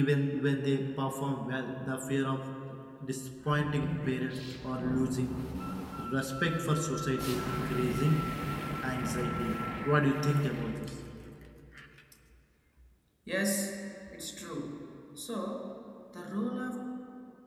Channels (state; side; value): identical; both; correlation 1.00